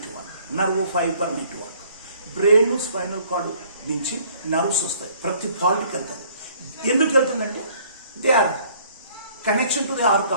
network brain spinal cord నుంచి nerves వస్తాయి, ప్రతి పార్ట్కి వెళ్తుంది. ఎందుకు వెళ్తుందంటే they are connection to the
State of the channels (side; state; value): both; inverted; correlation -0.58